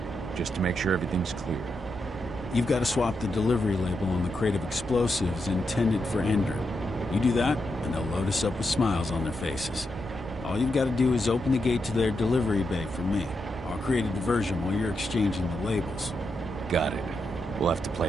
just to make sure everything's clear. You've got to swap the delivery label on the crate of explosives intended for Endrin. You do that, and they'll load us up with smiles on their faces. All you've got to do is open the gate to their delivery bay for me. I'll create a diversion while you're exchanging the labels. Got it. We'll have to play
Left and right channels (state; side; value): normal; both; correlation 0.84